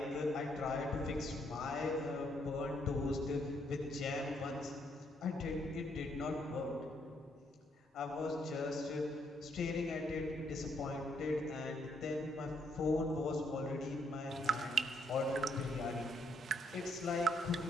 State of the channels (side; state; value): both; normal; correlation 0.72